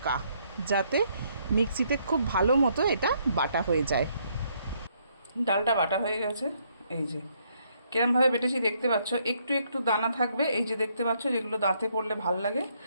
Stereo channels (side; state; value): both; inverted; correlation -0.71